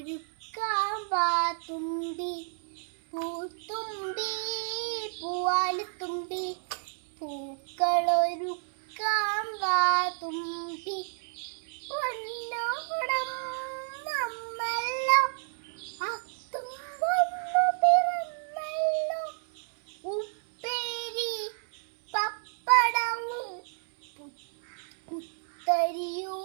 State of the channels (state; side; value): silent; left; 58 dB below the other